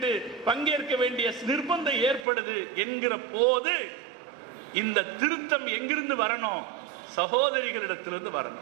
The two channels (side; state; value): left; drops out; at 2.2 s